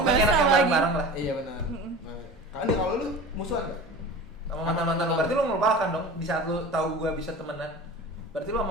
enak bakso yang lagi. bareng-bareng lah. Iya benar. Kalau lu musuhan enggak? Sama mantan-mantan lo, berarti lo melupakan dong di saat lo tahu gue bisa temenan. Berarti lo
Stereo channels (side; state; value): both; normal; correlation 0.36